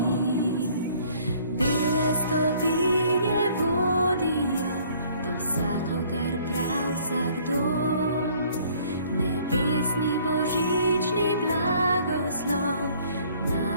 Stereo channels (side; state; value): both; inverted; correlation -0.58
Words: Bele stopinje vodijo do vsakogar prav vsak dom, nebesni božični blagoslov